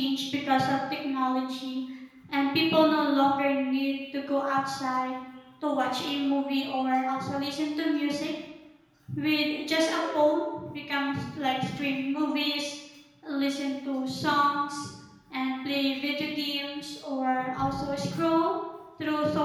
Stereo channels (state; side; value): identical; both; correlation 1.00